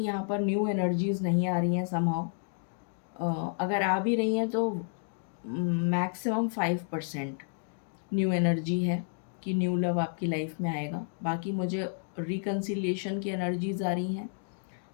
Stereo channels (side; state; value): right; silent; digital silence